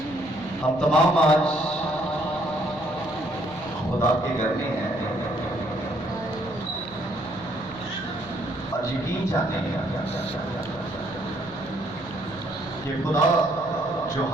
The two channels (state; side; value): noise; left; hum, 17 dB below the sound